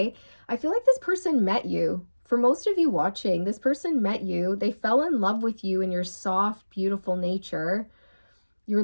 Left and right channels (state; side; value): inverted; both; correlation -1.00